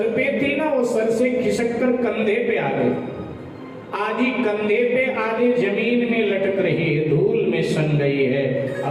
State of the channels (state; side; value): identical; both; correlation 1.00